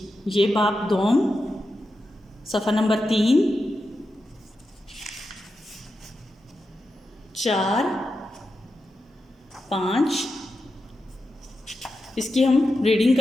ये बाब दोम सफ़ा नंबर 3, 4, 5 इसकी हम रीडिंग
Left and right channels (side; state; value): both; normal; correlation 0.89